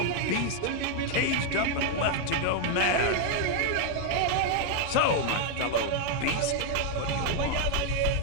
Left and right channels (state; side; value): different; both; correlation 0.01